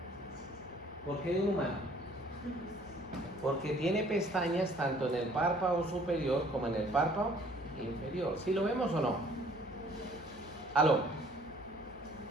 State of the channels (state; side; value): normal; both; correlation 0.57